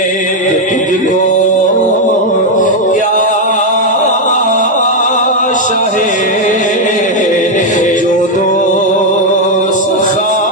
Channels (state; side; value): normal; both; correlation 0.02